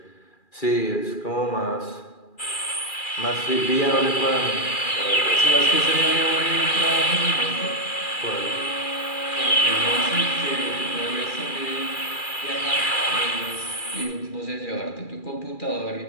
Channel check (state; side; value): late; right; 2.4 ms